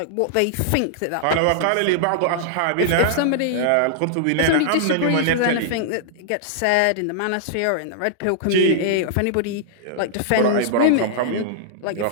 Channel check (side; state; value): both; different; correlation -0.01